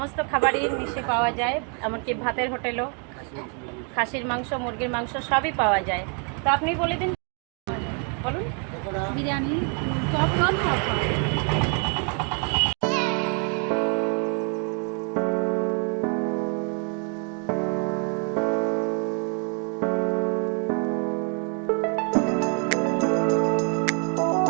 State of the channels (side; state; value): left; quieter; 39.0 dB